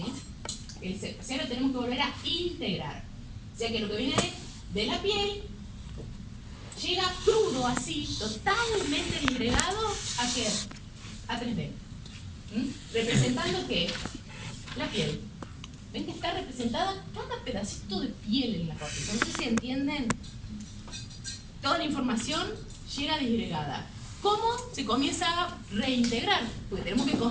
O sea, lo tenemos que volver a integrar. O sea, que lo que viene de la piel llega crudo así, totalmente disgregado, ¿a qué? A 3D. ¿Representando qué? La piel. ¿Ven que está representada cada pedacito de piel en la corteza? No sé si entienden. Toda la información llega disgregada. ¿Cómo se comienza a reintegrar? Porque tenemos que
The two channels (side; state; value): both; identical; correlation 1.00